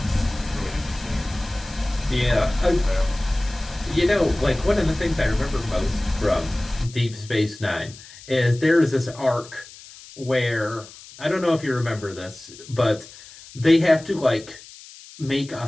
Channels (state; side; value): noise; left; hiss, 19 dB below the sound